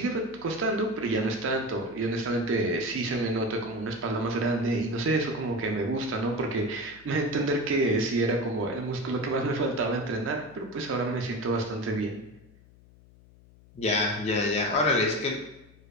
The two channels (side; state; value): left; noise; hum, 25 dB below the sound